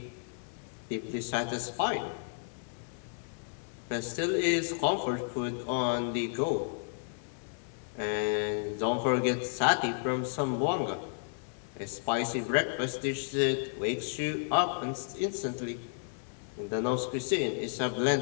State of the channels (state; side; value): silent; right; 56 dB below the other